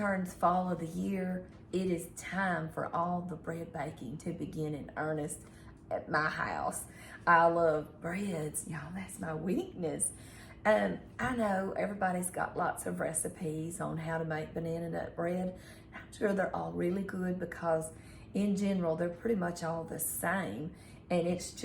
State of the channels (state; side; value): identical; both; correlation 1.00